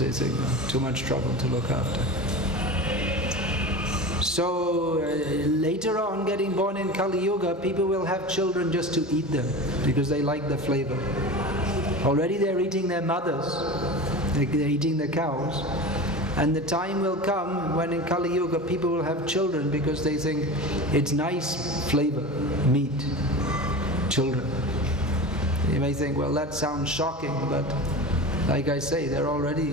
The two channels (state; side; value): normal; both; correlation 0.30